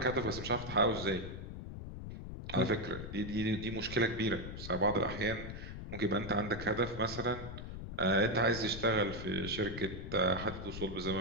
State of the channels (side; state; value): left; noise; rumble, 8 dB below the sound